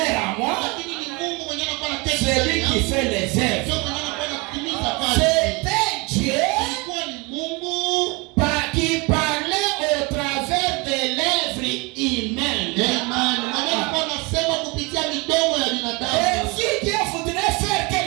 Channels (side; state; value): left; quieter; 27.0 dB